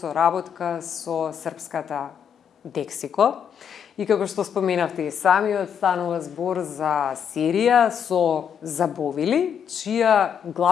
со српската Дексико. И како што споменавте и самиот, станува збор за серија со забовили, чија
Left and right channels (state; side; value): quieter; right; 8.0 dB